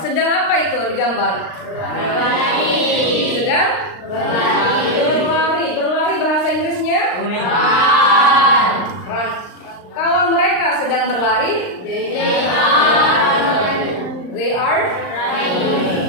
Sedang apa itu digambar? Berlari. Sedang berlari. Berlari bahasa Inggrisnya Run. run. Kalau mereka sedang berlari, they are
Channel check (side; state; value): right; late; 39 ms